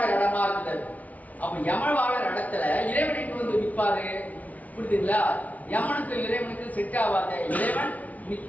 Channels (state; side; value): late; right; 0.072 ms